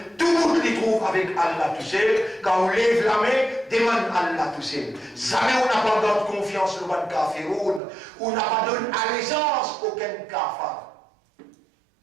tout le monde les trouve avec Allah tout seul. Quand on lève la main, demande Allah tout seul. Jamais on n'a pas donné confiance au ban kafirun, on n'a pas donné allégeance aucun kafir.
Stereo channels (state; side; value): drops out; left; at 7.8 s